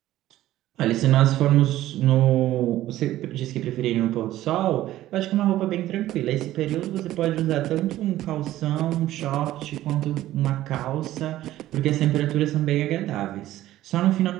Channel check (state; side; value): quieter; left; 14.5 dB